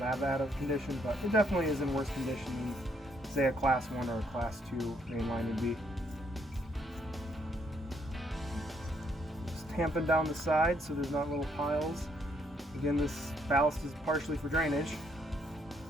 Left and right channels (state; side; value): normal; both; correlation 0.71